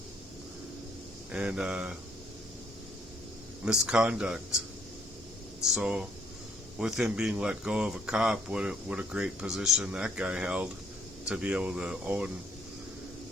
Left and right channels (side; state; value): both; normal; correlation 0.67